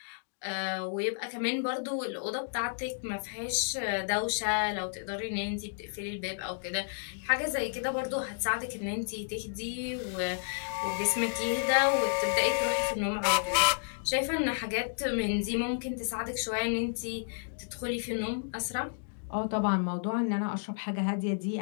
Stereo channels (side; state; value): right; silent; digital silence